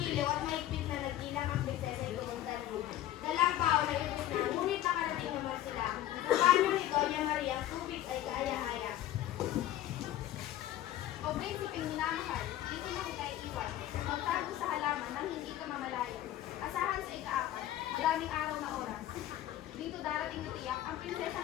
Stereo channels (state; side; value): quieter; right; 13.1 dB